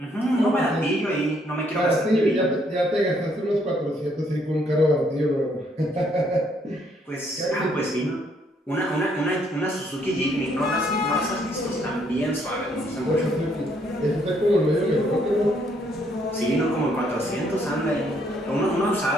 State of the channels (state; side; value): normal; both; correlation 0.69